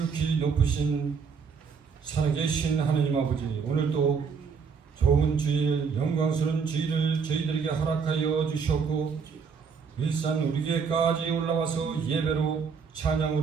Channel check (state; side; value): quieter; left; 5.9 dB